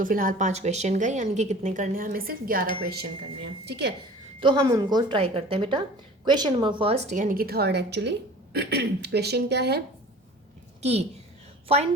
फिलहाल 5 क्वेश्चन गए, यानी कि कितने करने हैं? हमें सिर्फ 11 क्वेश्चन करने हैं। ठीक है, तो हम उनको ट्राई करते हैं बेटा। क्वेश्चन नंबर फर्स्ट, यानी कि थर्ड एक्चुअली। क्वेश्चन क्या है कि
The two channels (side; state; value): both; normal; correlation 0.43